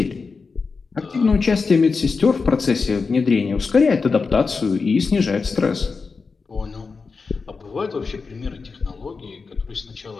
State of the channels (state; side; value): quieter; right; 4.7 dB